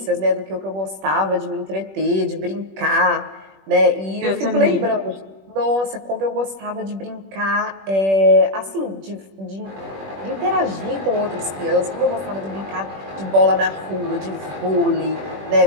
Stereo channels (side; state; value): left; late; 21 ms